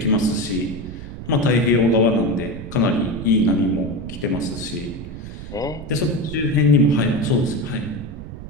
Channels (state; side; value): noise; right; rumble, 11 dB below the sound